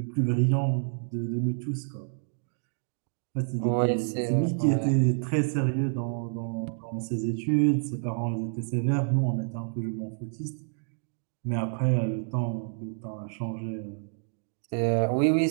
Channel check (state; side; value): silent; left; digital silence